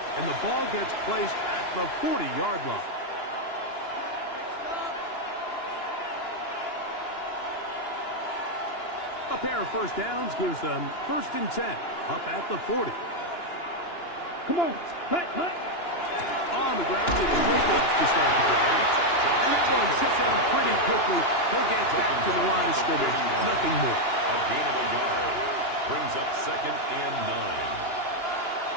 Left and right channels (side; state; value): right; late; 2.9 ms